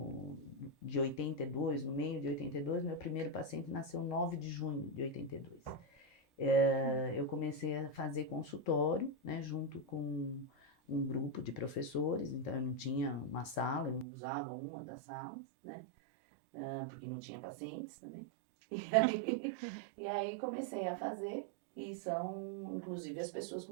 de 82, no meio de 82, meu primeiro paciente nasceu 9 de junho de 82. Eu comecei a fazer consultório, né, junto com um grupo de professores, então eu não tinha uma sala, eu usava uma das salas, né, porque não tinha pacientes também. E aí comecei a fazer, e são inclusive as pessoas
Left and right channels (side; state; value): left; drops out; at 14.1 s